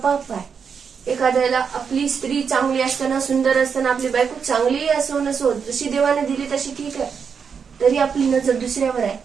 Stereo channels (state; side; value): quieter; left; 6.4 dB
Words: आहे. एखाद्याला आपली स्त्री चांगली असताना, सुंदर असताना, आपली बायको चांगली असो नसो, जशी देवाने दिली तशी ठीक आहे, तरी आपली नजर दुसऱ्यावर आहे,